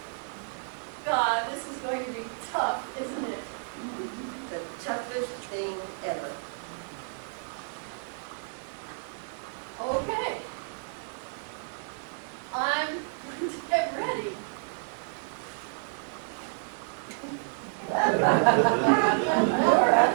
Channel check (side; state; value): left; silent; 57 dB below the other